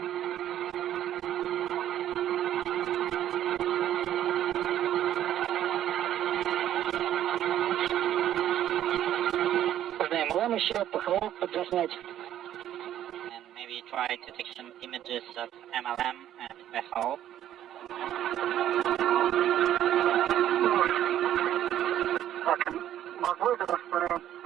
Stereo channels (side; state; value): left; quieter; 11.6 dB